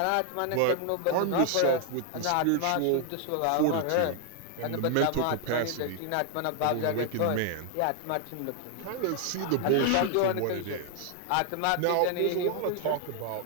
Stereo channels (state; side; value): different; both; correlation 0.00